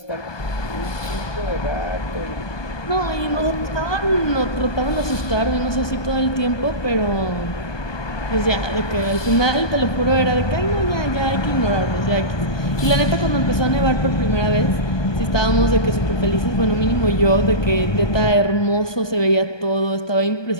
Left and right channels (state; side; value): late; right; 1.2 ms